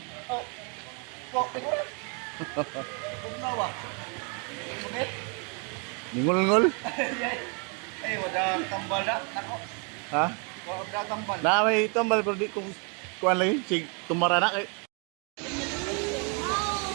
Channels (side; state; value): left; quieter; 36.5 dB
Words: Oh. Kok, tingnan. Pugnawa. Sumit. Ningol-ngol? Eh, wala tambal na. Ako. Ha? Wala tambal. Na may tambal pero di kung kuan lagi sig tumara na kay.